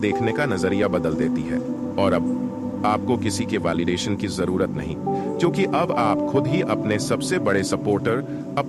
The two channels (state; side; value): identical; both; correlation 1.00